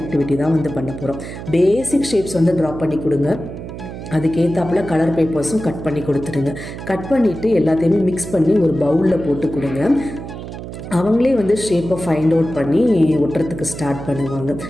ஆக்டிவிட்டி தான் வந்து பண்ண போகிறோம். பேசிக் ஷேப்ஸ் வந்து ட்ரா பண்ணி கொடுங்க. அதுக்கேற்றாப்புல கலர் பேப்பர்ஸும் கட் பண்ணி கொடுத்துருங்க. கட் பண்ணிவிட்டு எல்லாத்தையுமே மிக்ஸ் பண்ணி ஒரு பவுலில் போட்டு கொடுங்க. அவங்களே வந்து ஷேப்பை ஃபைண்ட் அவுட் பண்ணி ஒட்டுறதுக்கு ஸ்டார்ட் பண்ணுவாங்க.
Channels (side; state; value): right; noise; hum, 10 dB below the sound